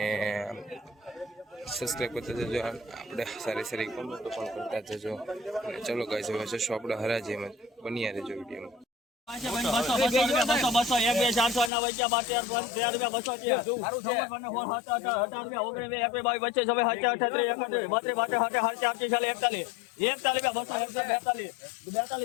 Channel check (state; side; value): drops out; right; at 11.7 s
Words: સબસ્ક્રાઈબ કરતા જજો। આપણે સારી સારી કોમેન્ટો પણ કરતા જજો। ચલો ગાઈસ, હવે જશું આપણે હરાજીમાં, બન્યા રહેજો વિડીયોમાં।